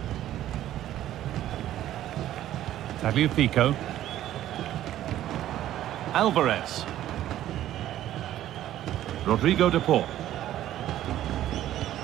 Tagliafico. Alvarez. Rodrigo de Paul.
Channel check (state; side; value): quieter; left; 12.8 dB